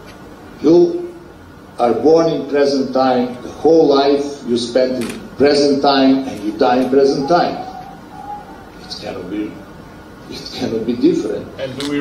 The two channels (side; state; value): both; identical; correlation 1.00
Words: You are born in present time, the whole life you spend in present time, and you die in present time. It cannot be different. And do we